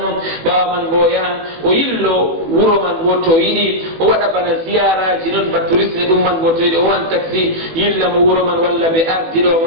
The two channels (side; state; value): left; late; 18 ms